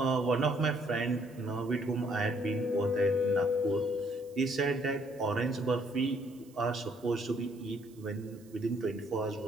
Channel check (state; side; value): noise; right; hiss, 27 dB below the sound